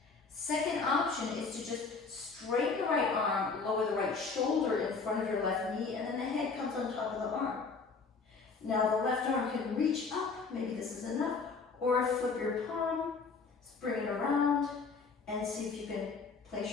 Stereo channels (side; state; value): right; quieter; 4.6 dB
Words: Second option is to just straighten the right arm, lower the right shoulder in front of your left knee, and then the head comes on top of the arm. Now the left arm can reach up, maybe this is enough, or flip your palm, bring it around, and see if you can place